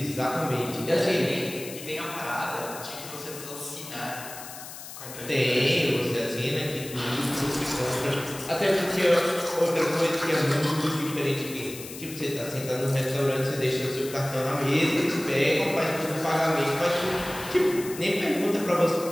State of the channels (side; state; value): left; noise; hiss, 12 dB below the sound